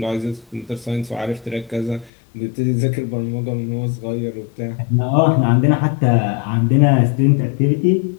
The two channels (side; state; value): right; drops out; at 2.1 s